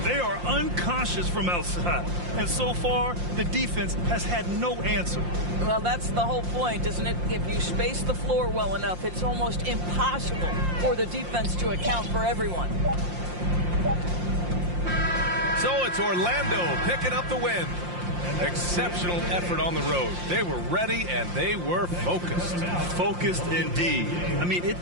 They are unconscious from outside. And so far, the defense has had no answer. Well, that's the whole point, isn't it? If you space the floor well enough, it's almost impossible for the defense to account for everyone. So it's Orlando picking up the win. Exceptional effort on the road. They were ready and they were focused. Focused indeed. I mean, it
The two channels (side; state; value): left; late; 5.7 ms